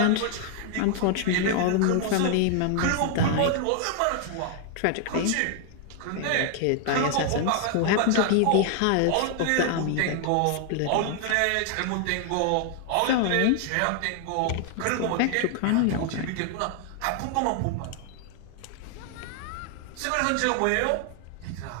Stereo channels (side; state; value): both; different; correlation 0.00